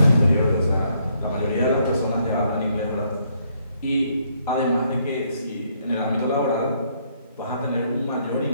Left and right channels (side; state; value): both; inverted; correlation -0.71